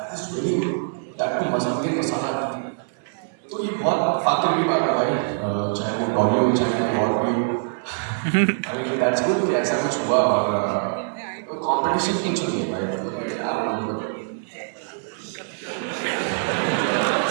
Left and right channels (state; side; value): silent; left; digital silence